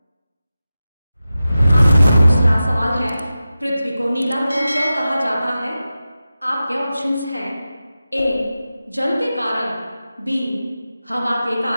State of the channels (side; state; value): both; inverted; correlation -0.93